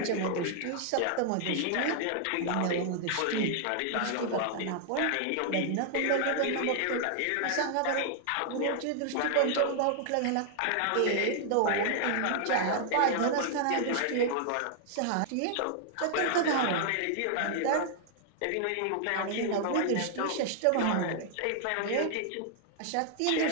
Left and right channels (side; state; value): both; different; correlation 0.00